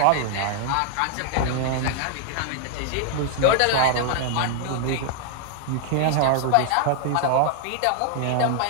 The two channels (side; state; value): both; different; correlation 0.00